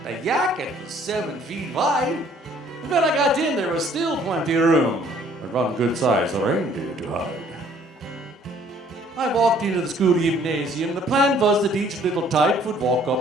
The jacket was 7 feet wide. And when I got in, there was still plenty of room. But one good size reindeer to hide. I walked into the school gymnasium. The plan was that each little type would walk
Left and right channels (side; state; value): both; normal; correlation 0.59